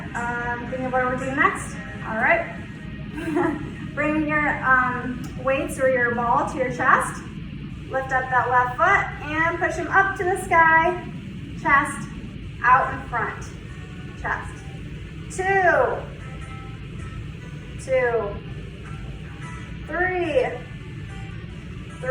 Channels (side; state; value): both; identical; correlation 1.00